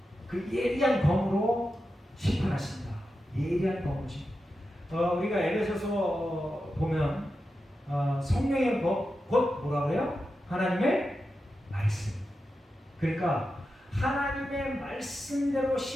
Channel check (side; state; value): both; normal; correlation 0.90